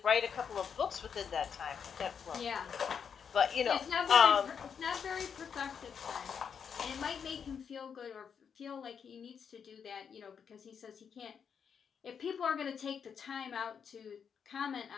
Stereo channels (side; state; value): right; quieter; 7.0 dB